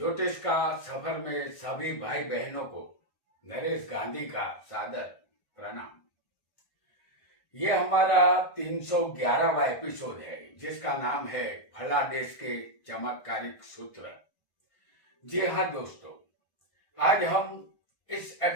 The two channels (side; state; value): right; late; 1.5 ms